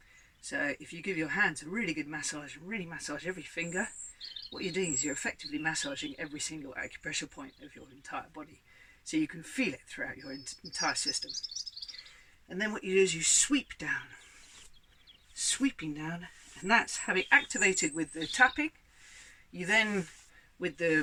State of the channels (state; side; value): identical; both; correlation 1.00